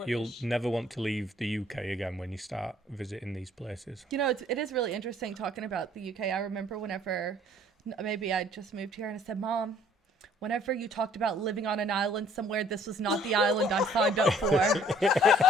You'll British. never want to leave the UK again when you start visiting these places. You know, it is really interesting talking about the UK. I remember whenever maybe I just moved here and I said, Mom, whenever you talked about living on an island somewhere, this was not the island I signed up for.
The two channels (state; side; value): normal; both; correlation 0.58